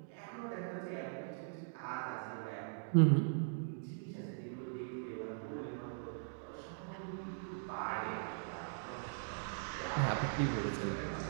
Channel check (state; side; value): silent; left; digital silence